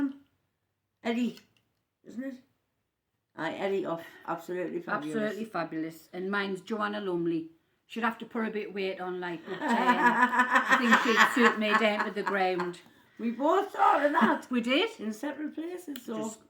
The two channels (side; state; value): both; identical; correlation 1.00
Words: Eddie, isn't it? Eddie off Absolutely Fabulous. Absolutely fabulous. And mine's Joanna Lumley. She'd have to put a bit of weight on, like, but I think she'd suit me down to the ground. We both thought of that. We did. In separate places, so. Just